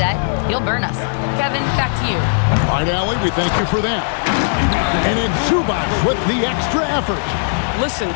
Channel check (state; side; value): silent; right; digital silence